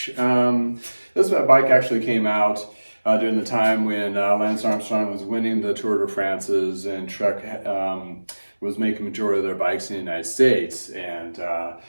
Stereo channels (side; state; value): both; inverted; correlation -1.00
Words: This bike actually came out during the time when Lance Armstrong was winning the Tour de France's and Trek was making majority of their bikes in the United States. And the